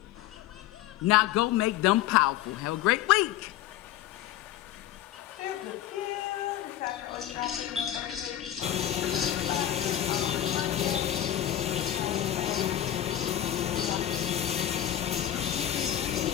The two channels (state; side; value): quieter; right; 12.1 dB